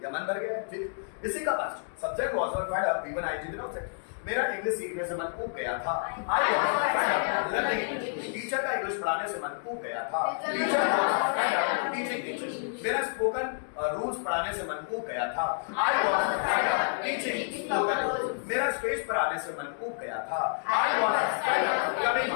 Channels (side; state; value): right; silent; digital silence